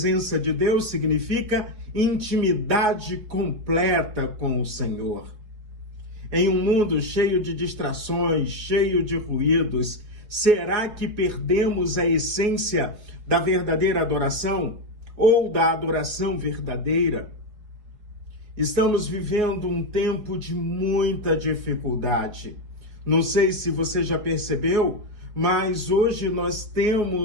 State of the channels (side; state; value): left; late; 4.3 ms